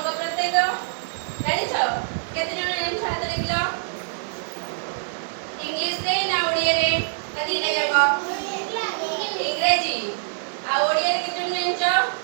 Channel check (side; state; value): left; silent; 62 dB below the other